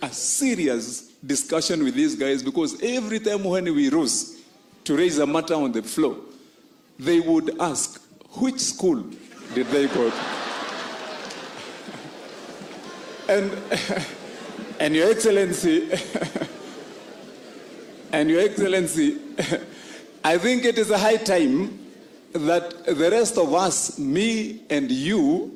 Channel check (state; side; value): identical; both; correlation 1.00